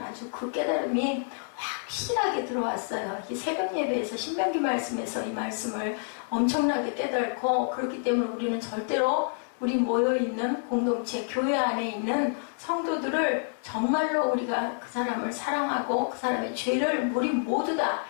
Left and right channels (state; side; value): silent; right; 59 dB below the other